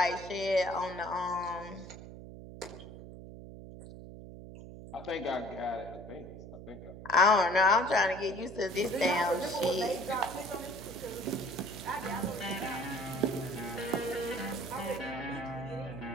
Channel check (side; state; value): right; noise; hum, 13 dB below the sound